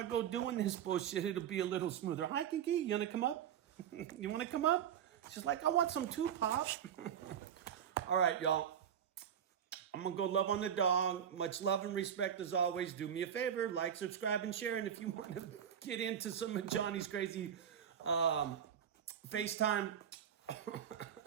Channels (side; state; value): left; quieter; 9.0 dB